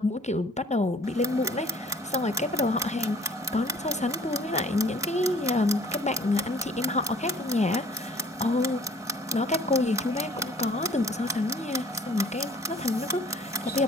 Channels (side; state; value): both; normal; correlation 0.54